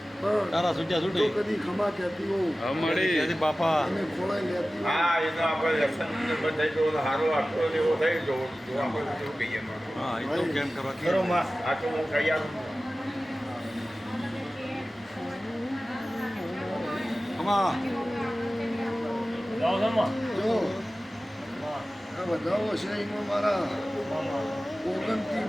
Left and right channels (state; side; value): normal; both; correlation 0.96